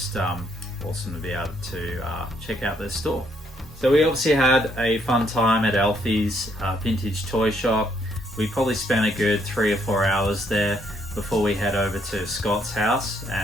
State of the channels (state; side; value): normal; both; correlation 0.71